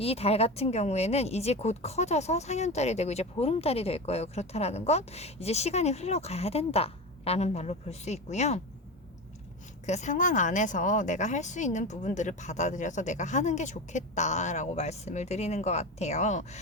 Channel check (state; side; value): normal; both; correlation 0.24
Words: 달 같은 경우에는 이제 곧 커져서 상현달이 되고 이제 보름달이 될 거예요. 그렇다라는 건 이제 시간이 흘러가야 된다 라는 말로 볼 수 있고요. 그 상황 안에서 내가 할 수 있는 부분들을 받아들여서 내가 하는 게 좋겠다라고 말씀을 드리는 것 같아요.